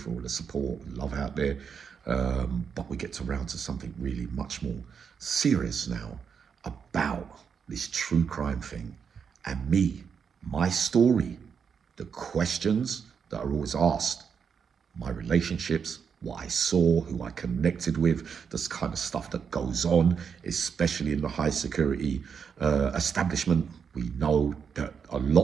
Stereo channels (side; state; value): left; quieter; 6.6 dB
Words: all the support and love out there. But we get to round to something really much more serious now about this true crime thing and me, my story, the questions that are always asked, my relationships, what I saw, who I connected with, this kind of stuff that goes on, especially in the high security establishment. We know that a